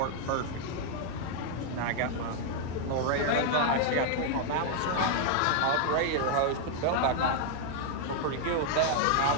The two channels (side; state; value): both; different; correlation 0.00